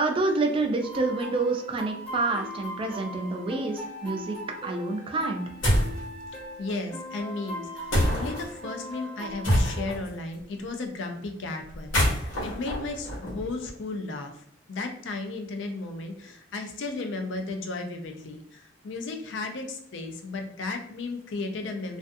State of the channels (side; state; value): both; normal; correlation 0.52